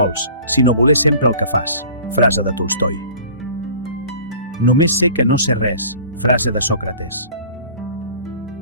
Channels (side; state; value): both; inverted; correlation -0.46